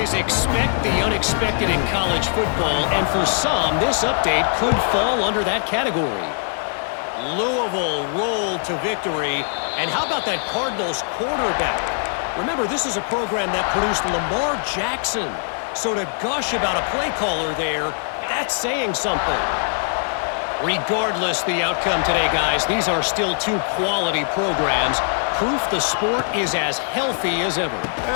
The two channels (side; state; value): right; silent; digital silence